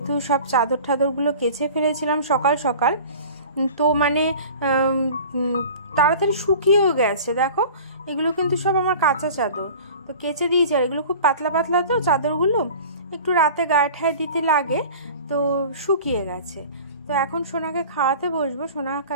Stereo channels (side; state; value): both; inverted; correlation -0.41